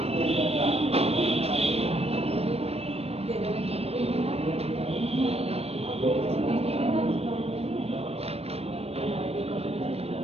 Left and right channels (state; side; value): late; left; 0.29 ms